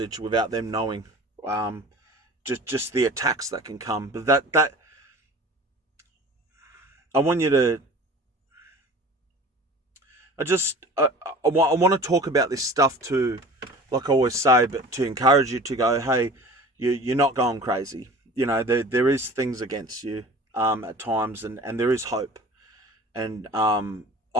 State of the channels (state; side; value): normal; both; correlation 0.41